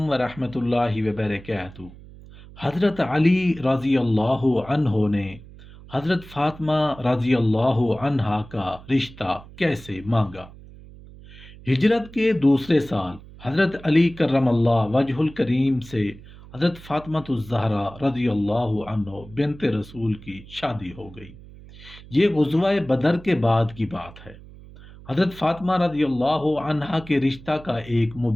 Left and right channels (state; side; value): noise; right; hum, 19 dB below the sound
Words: ورحمۃ اللہ وبرکاتہ۔ حضرت علی رضی اللہ عنہ نے حضرت فاطمہ رضی اللہ عنہا کا رشتہ کیسے مانگا؟ ہجرت کے دوسرے سال حضرت علی کرم اللہ وجہ الکریم سے حضرت فاطمہ الزہرا رضی اللہ عنہ بنت رسول کی شادی ہو گئی۔ یہ غزوہ بدر کے بعد کی بات ہے۔ حضرت فاطمہ رضی اللہ عنہا کے رشتہ کا ایک